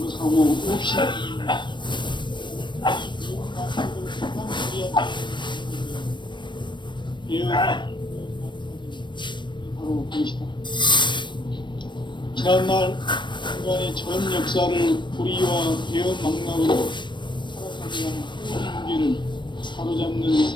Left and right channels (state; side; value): late; right; 0.22 ms